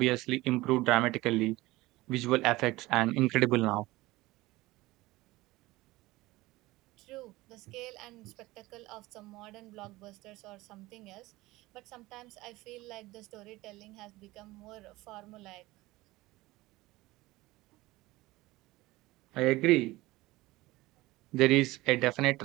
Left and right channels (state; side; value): quieter; left; 19.4 dB